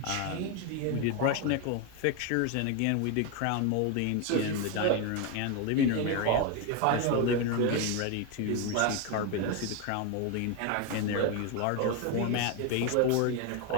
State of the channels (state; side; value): different; both; correlation 0.02